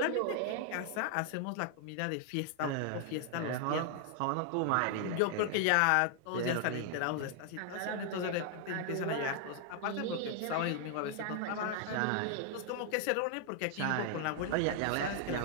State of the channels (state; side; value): different; both; correlation 0.00